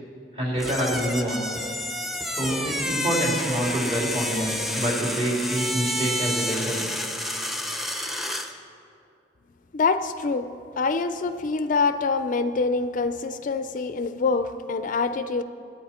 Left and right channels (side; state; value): both; normal; correlation 0.33